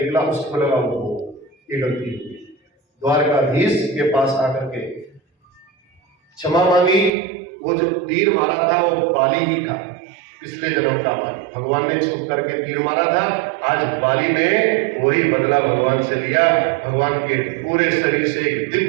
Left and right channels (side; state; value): left; drops out; at 7.1 s